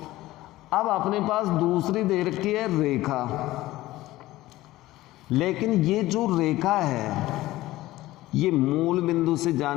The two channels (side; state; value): right; quieter; 17.0 dB